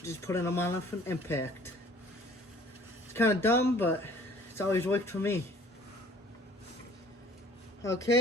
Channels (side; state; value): both; normal; correlation 0.52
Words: Just putting them on with an impact. It's kind of dumb, but it's always worked for me.